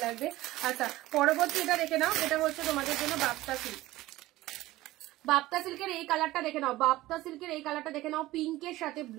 লাগবে। আচ্ছা পরবর্তী এটা দেখে নাও, এটা হচ্ছে তোমাদের জন্য বাপ্তা সিল্ক, বাপ্তা সিল্কের এই কালারটা দেখে নাও, বাপ্তা সিল্কের এই কালারটা দেখে নাও, পিঙ্কের সাথে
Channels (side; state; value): left; quieter; 17.3 dB